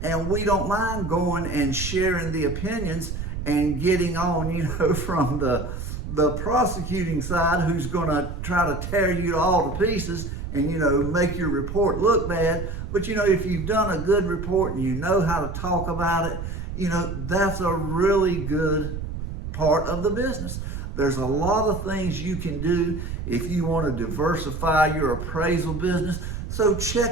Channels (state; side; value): noise; right; rumble, 6 dB below the sound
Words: and we don't mind going and sharing the opinions and getting on, from the prosecuting side, who's going to try to tear you all to pieces and, make your report look bad. But, if you've done a good report and you know how to talk about it, that's a really good part of the business. There's a lot of things you can do if you want to diversify your appraisal business. So